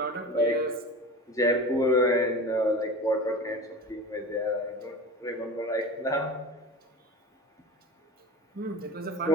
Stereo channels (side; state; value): both; normal; correlation 0.32